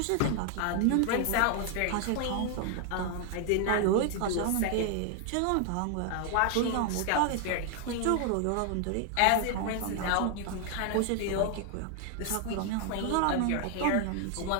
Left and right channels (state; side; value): different; both; correlation 0.00